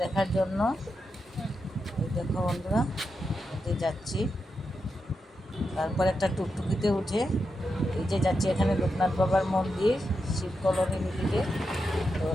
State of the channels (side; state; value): both; normal; correlation 0.87